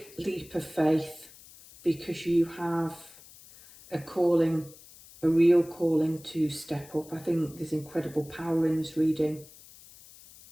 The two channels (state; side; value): noise; left; hiss, 21 dB below the sound